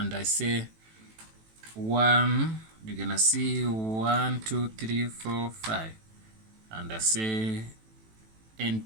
I say 1. You're gonna see 1 2 3 4 5, and I say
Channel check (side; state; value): left; late; 18 ms